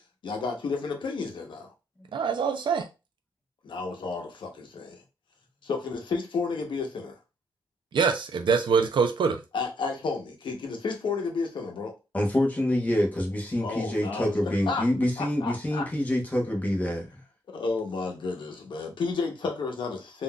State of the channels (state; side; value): normal; both; correlation 0.73